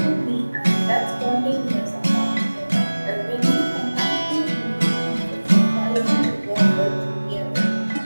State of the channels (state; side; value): inverted; both; correlation -1.00